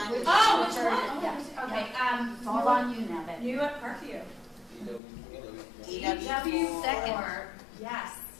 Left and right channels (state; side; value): drops out; right; at 5.0 s